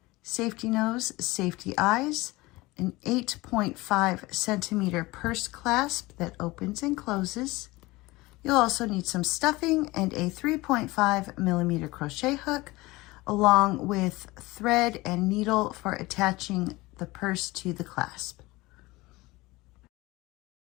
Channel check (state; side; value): quieter; right; 20.9 dB